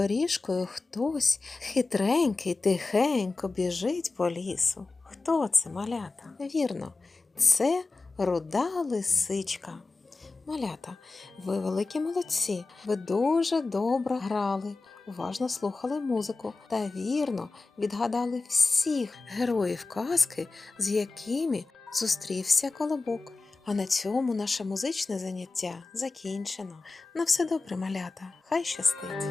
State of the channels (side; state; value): right; quieter; 3.7 dB